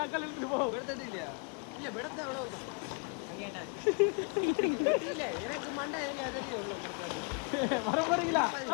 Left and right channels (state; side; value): quieter; right; 37.0 dB